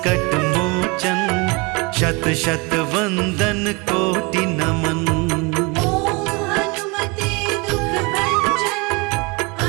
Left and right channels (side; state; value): left; quieter; 28.2 dB